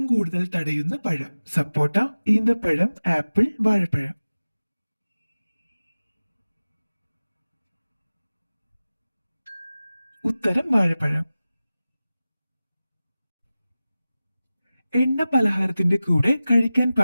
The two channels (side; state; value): both; inverted; correlation -0.96